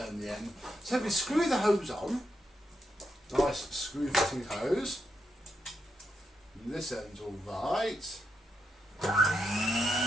the end. So we screw the hose on, nice screw fitting hose. And this end's all right.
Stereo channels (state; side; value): normal; both; correlation 0.82